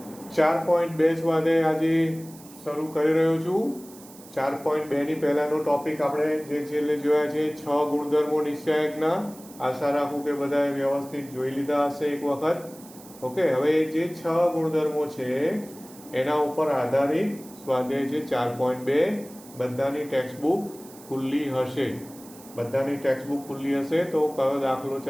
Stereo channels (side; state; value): right; noise; hiss, 20 dB below the sound